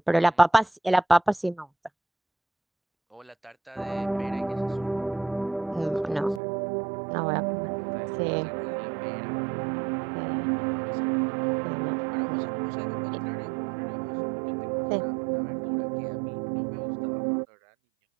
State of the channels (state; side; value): drops out; left; at 6.4 s